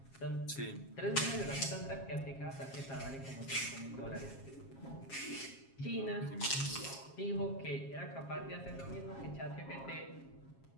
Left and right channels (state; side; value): late; right; 7.4 ms